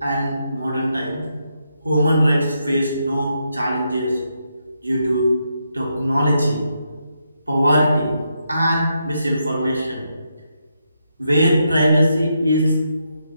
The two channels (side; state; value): both; inverted; correlation -0.81